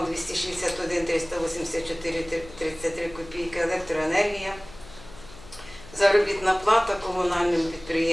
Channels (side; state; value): left; noise; hum, 19 dB below the sound